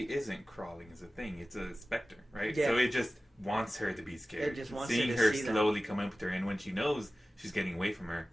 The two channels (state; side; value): normal; both; correlation 0.96